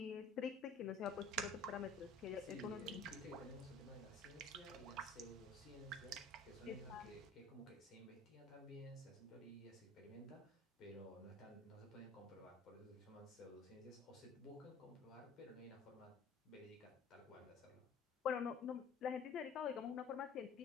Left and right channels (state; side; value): quieter; right; 3.6 dB